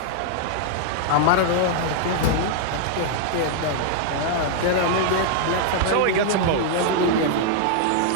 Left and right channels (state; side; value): different; both; correlation -0.01